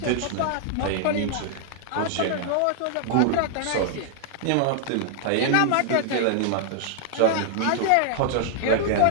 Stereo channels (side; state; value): both; different; correlation -0.01